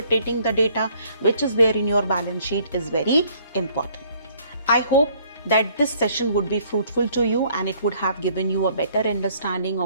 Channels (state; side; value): inverted; both; correlation -0.62